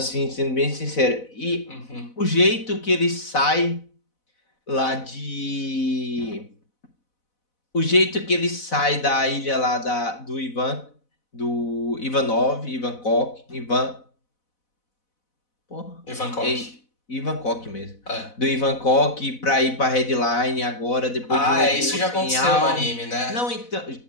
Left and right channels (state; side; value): late; right; 4.0 ms